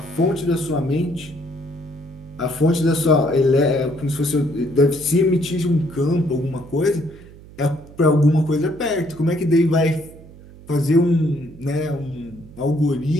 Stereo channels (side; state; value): right; noise; hum, 20 dB below the sound